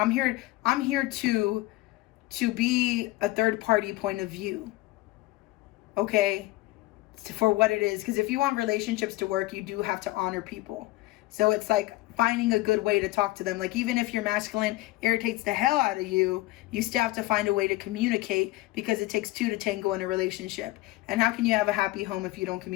here to be a third party point of view. Okay. For what it is. Because if you want relationships to work, you do have to honor people. So it's like finding a good way to talk to them. Like, even if your masculine irritates the hell out of you, you still have to find a way to communicate, because it takes two to tango in a relationship. And how can you have a happy home if you don't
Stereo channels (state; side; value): quieter; right; 18.9 dB